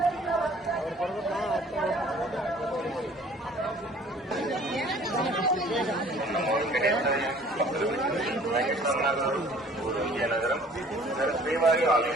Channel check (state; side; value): normal; both; correlation 0.52